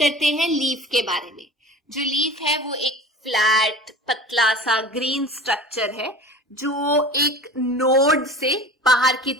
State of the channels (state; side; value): normal; both; correlation 0.39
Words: हैं लीफ के बारे में। जो लीफ है वो एक फ्लैट पतला सा ग्रीन स्ट्रक्चर है जो एक नोड से बाहर की